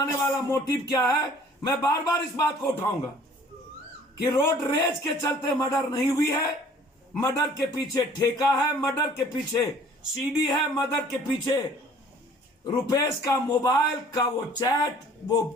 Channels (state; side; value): normal; both; correlation 0.53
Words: वाला मोटिव क्या है, मैं बार बार इस बात को उठाऊंगा कि रोड रेज के चलते मर्डर नहीं हुई है। मर्डर के पीछे ठेका है, मर्डर के पीछे सीडी है, मर्डर के पीछे रुपेश का मोबाइल का वो चैट, वो